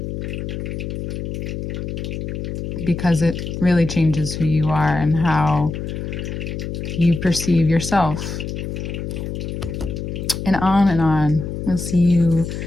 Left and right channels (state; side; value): noise; left; hum, 5 dB below the sound